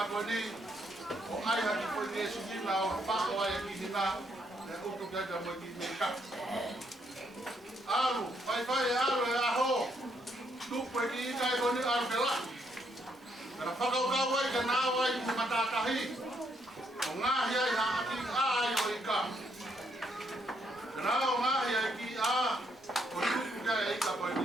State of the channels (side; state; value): both; normal; correlation 0.73